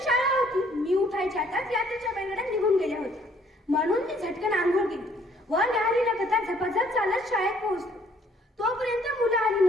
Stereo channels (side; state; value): both; normal; correlation 0.62